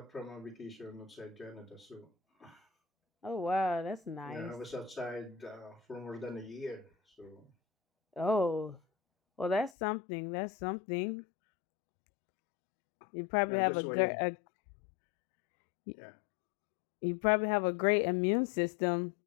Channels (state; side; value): drops out; right; at 9.7 s